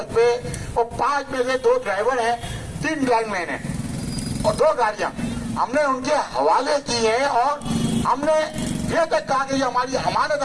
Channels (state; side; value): identical; both; correlation 1.00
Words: पे, और 5 में से 2 ड्राइवर हैं, 3 लाइनमैन हैं और 2 गाड़ियां हमने उनके हवाले की है। और हमने ये तक कहा कि ये हमारी अमानत